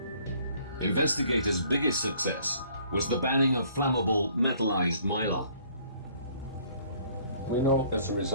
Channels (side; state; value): both; inverted; correlation -0.59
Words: Investigators' biggest success was the banning of flammable metallized mylar. We know as a